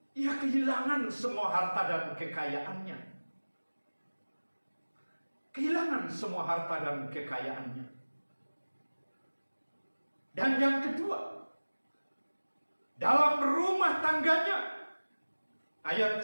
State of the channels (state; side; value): inverted; both; correlation -1.00